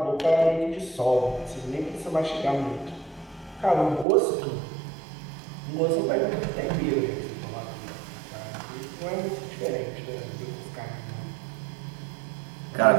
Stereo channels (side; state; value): left; drops out; at 4.0 s